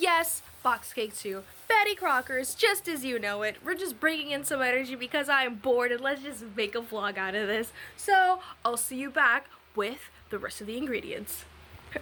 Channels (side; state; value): both; identical; correlation 1.00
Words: box cake too. Betty Crocker's, just as you know it. We're just bringing in some energy because I'm bored and let's just make a vlog out of this. So, I'll see you back with the rest of the ingredients.